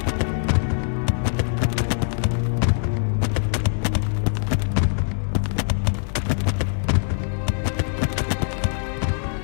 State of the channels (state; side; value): silent; right; 58 dB below the other